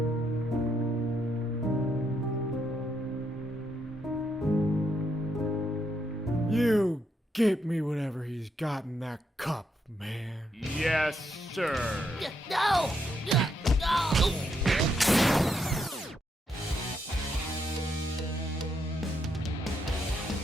get me whatever he's got in that cup, man. Yes, sir. No!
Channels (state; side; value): normal; both; correlation 0.78